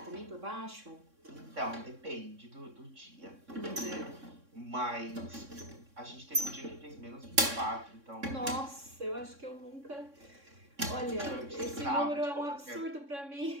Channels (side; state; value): left; late; 3.6 ms